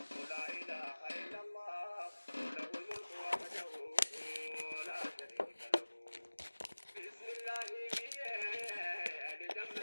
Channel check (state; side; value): inverted; both; correlation -1.00